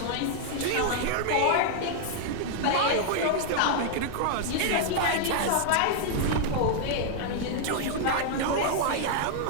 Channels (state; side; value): different; both; correlation -0.01